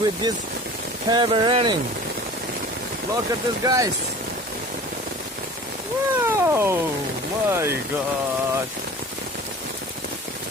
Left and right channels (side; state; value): both; normal; correlation 0.41